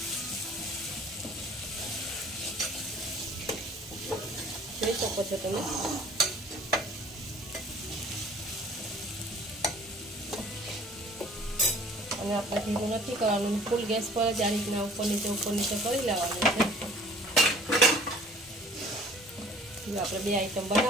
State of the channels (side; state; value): both; normal; correlation 0.52